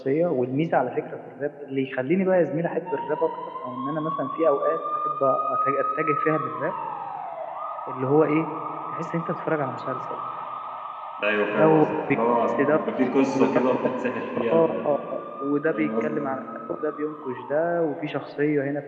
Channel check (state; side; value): identical; both; correlation 1.00